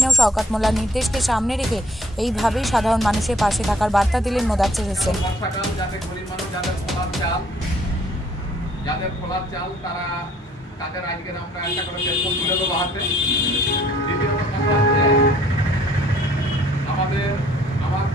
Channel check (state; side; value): normal; both; correlation 0.61